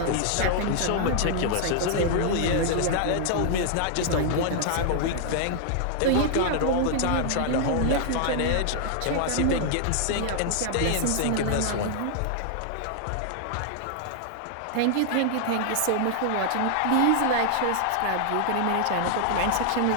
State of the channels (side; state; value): both; different; correlation 0.00